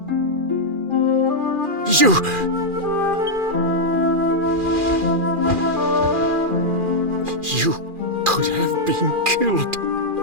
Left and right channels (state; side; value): late; left; 2.4 ms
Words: You could have been killed.